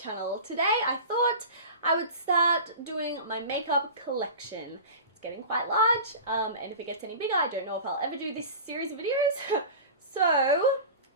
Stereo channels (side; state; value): both; inverted; correlation -0.34